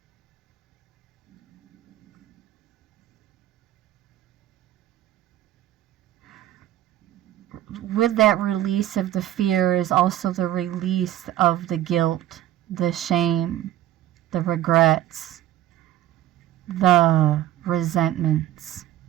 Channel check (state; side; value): quieter; left; 13.3 dB